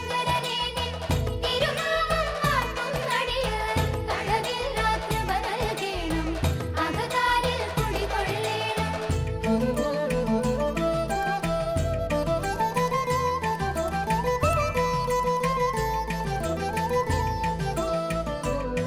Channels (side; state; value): both; identical; correlation 1.00